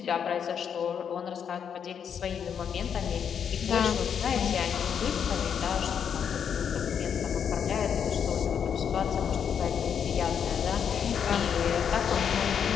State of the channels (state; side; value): quieter; right; 7.7 dB